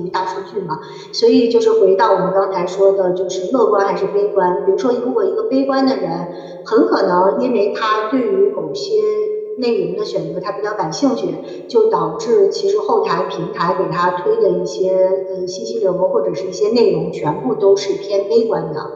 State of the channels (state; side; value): identical; both; correlation 1.00